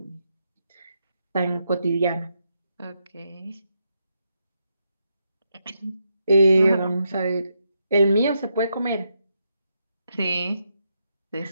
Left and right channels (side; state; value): both; inverted; correlation -0.82